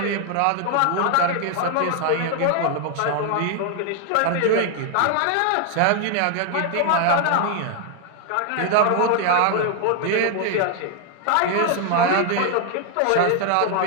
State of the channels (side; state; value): both; different; correlation 0.00